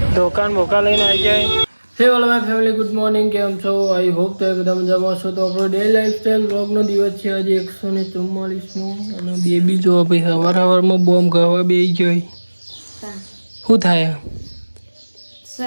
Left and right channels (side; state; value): both; inverted; correlation -1.00